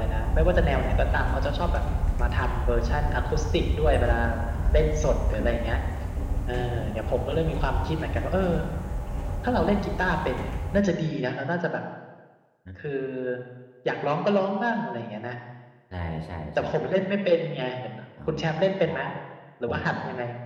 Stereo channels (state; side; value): identical; both; correlation 1.00